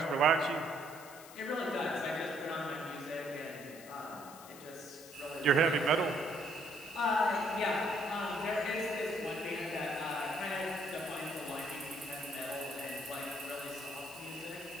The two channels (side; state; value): left; noise; hiss, 17 dB below the sound